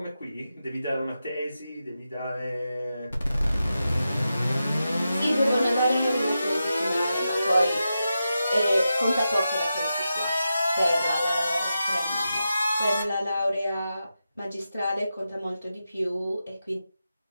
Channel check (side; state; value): both; inverted; correlation -0.90